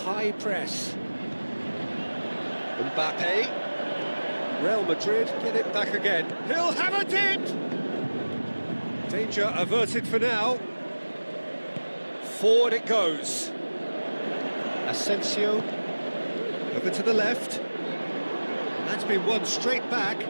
press. Mbappe. Real Madrid get it back again. He'll have a dip! Danger averted for now. Forward it goes. Asensio. Over to the left. And that's been won straight back.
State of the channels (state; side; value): inverted; both; correlation -1.00